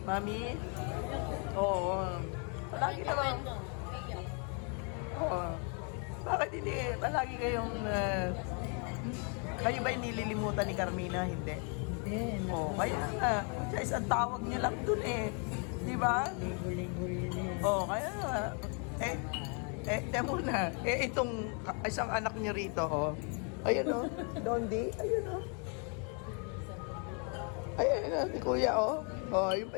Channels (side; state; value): right; quieter; 37.7 dB